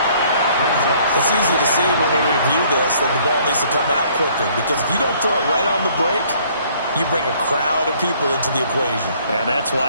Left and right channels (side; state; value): both; inverted; correlation -0.60